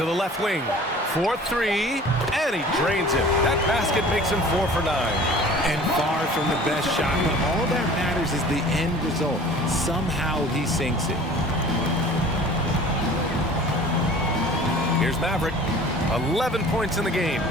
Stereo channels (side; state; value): both; normal; correlation 0.45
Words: the left wing. 4-3. And he drains it. That basket makes him 4 for 9. And far from the best shot, but all that matters is the end result. Somehow he sinks it. Here's Maverick. 11 points in the game.